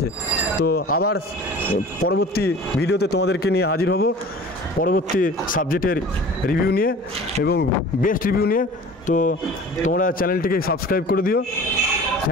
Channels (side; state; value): both; normal; correlation 0.42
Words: তো আবার পরবর্তী ভিডিওতে তোমাদেরকে নিয়ে হাজির হব, পরবর্তী সাবজেক্টের রিভিউ নিয়ে এবং বেস্ট রিভিউ নিয়ে। তো তোমরা চ্যানেলটিকে সাবস্ক্রাইব করে দিও।